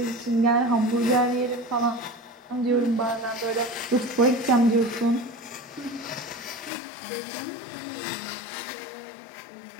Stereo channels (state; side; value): drops out; right; at 6.7 s